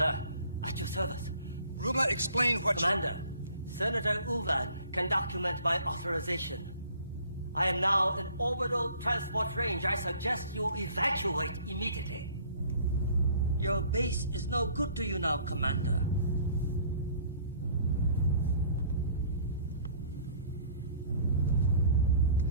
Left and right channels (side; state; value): both; inverted; correlation -0.54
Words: At your service. Rumla, explain what Commander, Senator Uvan can document my authorization. I am now in orbital transport range. I suggest you evacuate immediately. Your base is no good to you now, Commander.